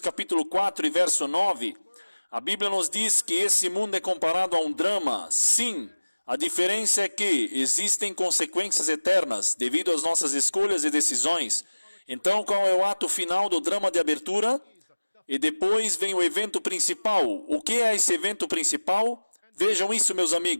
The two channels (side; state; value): both; inverted; correlation -1.00